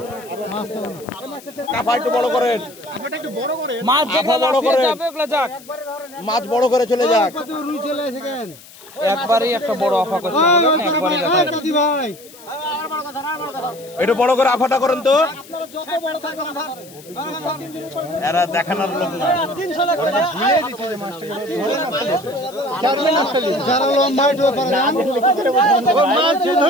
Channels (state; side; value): noise; left; hiss, 21 dB below the sound